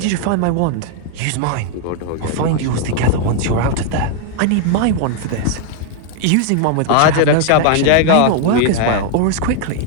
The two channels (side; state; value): both; different; correlation 0.00